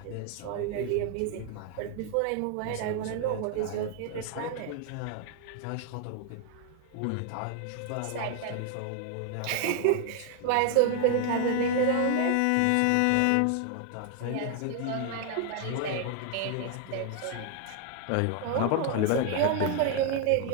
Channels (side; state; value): both; different; correlation 0.00